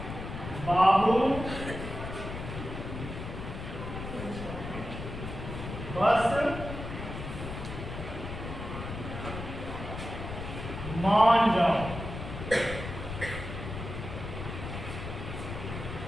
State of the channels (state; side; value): noise; left; rumble, 8 dB below the sound